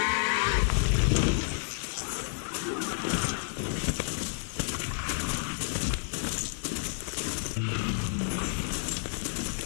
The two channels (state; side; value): silent; right; 58 dB below the other